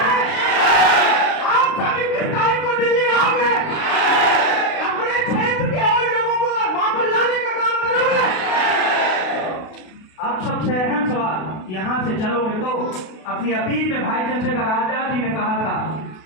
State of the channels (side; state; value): right; late; 32 ms